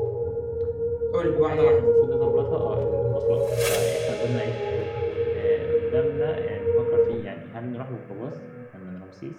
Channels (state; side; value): identical; both; correlation 1.00